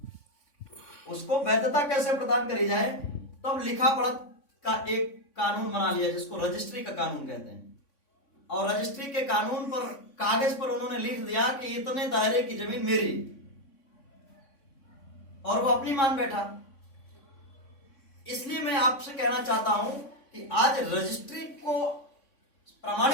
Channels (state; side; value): late; right; 3.5 ms